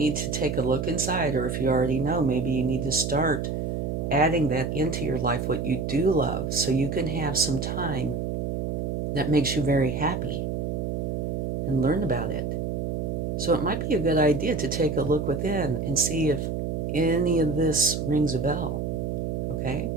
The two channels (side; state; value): right; noise; hum, 2 dB below the sound